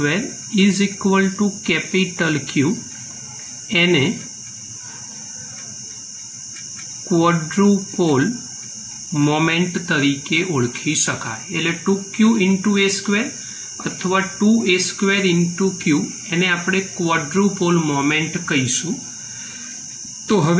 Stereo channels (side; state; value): both; identical; correlation 1.00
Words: is equal to capital Q, एने क्वॉड्रुपोल मोमेंट तरीके ओळखी शकाय। एटले 2q इंटू a² अथवा 2a² इंटू q एने आपणे क्वॉड्रुपोल मोमेंट कहीशुं। तो